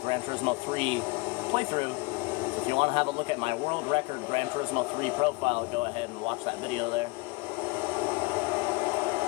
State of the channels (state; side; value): quieter; right; 26.4 dB